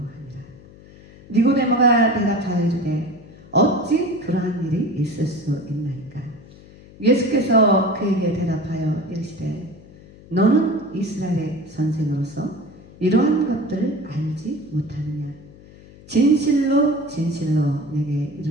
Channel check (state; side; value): noise; left; hum, 21 dB below the sound